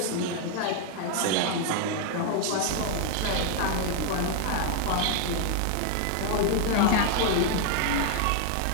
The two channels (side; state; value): both; different; correlation 0.00